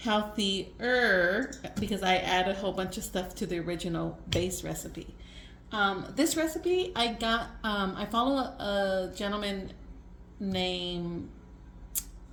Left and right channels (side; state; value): both; identical; correlation 1.00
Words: because I add a whole bunch of stuff to the original base recipe. This recipe I got, I follow a gentleman named